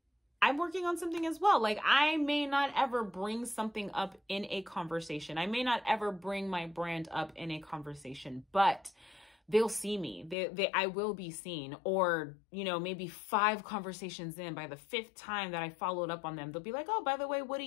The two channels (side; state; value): right; drops out; at 10.4 s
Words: I'm working on something as well. Like, I may not ever bring something up in a conversation. I may not ever bring my brand up in a conversation, but they'll see me. I will be seen. Or, you know, maybe 5 conversations in, by the 5th time that I followed up on them, they'll be like, oh, by the way, what do